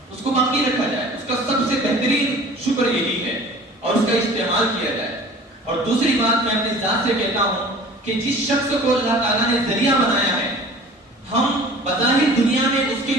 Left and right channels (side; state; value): both; normal; correlation 0.45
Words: اس کو باقی رکھا جائے۔ اس کا سب سے بہترین شکر یہی ہے اور اس کا استعمال کیا جائے۔ اور دوسری بات میں اپنی ذات سے کہتا ہوں کہ جس شخص کو اللہ تعالیٰ نے ذریعہ بنایا ہے، ہم بظاہر دنیا میں اس کے